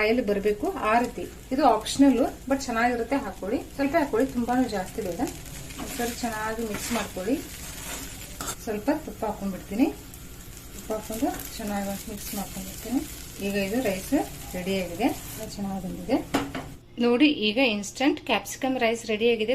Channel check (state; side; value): identical; both; correlation 1.00